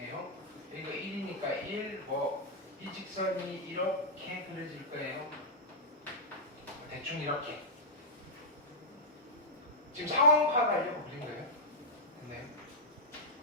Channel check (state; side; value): normal; both; correlation -0.09